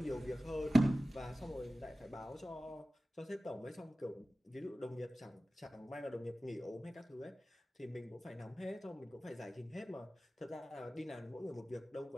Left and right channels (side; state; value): both; normal; correlation 0.96